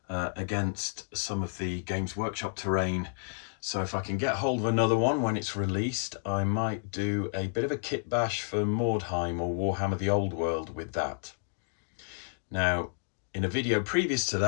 against some of the Games Workshop terrain. So if I can get hold of another one when it's released, I might do a bit of a kit bash for Mordheim or Warhammer the Old World with that. Now, in a video previous to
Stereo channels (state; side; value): silent; right; digital silence